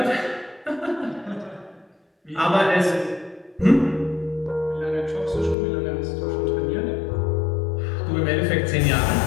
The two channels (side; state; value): right; drops out; at 5.6 s